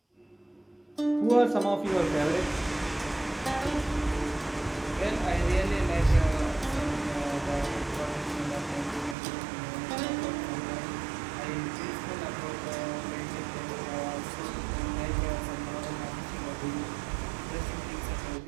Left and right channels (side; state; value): left; drops out; at 9.2 s